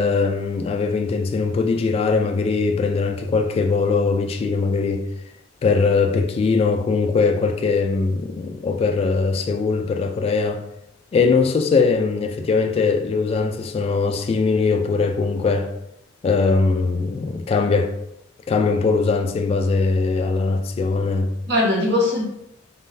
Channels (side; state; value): right; quieter; 3.8 dB